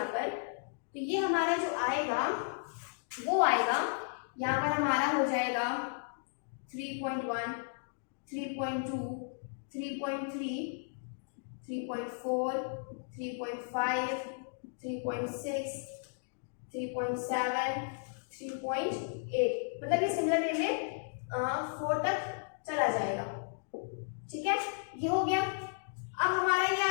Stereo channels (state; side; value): silent; right; digital silence